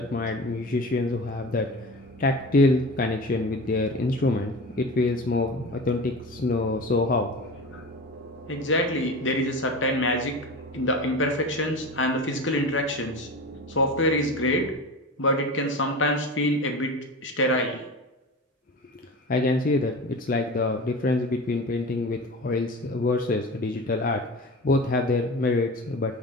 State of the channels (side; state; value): both; normal; correlation 0.31